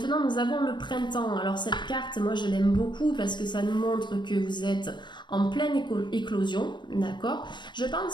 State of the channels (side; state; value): right; late; 0.22 ms